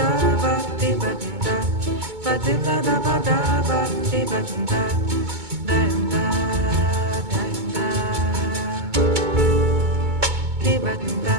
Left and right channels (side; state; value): left; late; 2.2 ms